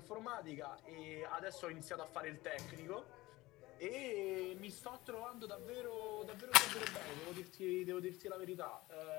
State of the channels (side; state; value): right; quieter; 19.3 dB